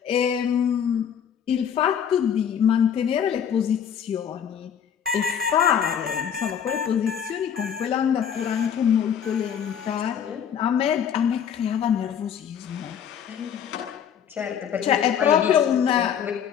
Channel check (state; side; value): quieter; right; 8.3 dB